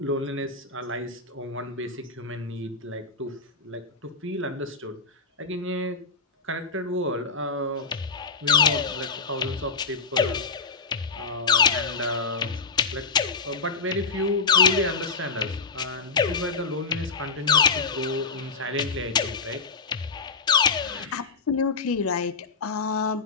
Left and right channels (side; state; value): right; quieter; 4.6 dB